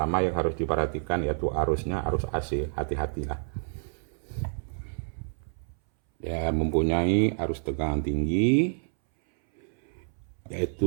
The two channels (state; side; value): silent; left; 59 dB below the other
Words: yang harus diperhatikan yaitu arusnya, arus AC. Hati-hatilah ya, mempunyai arus tegangan tinggi,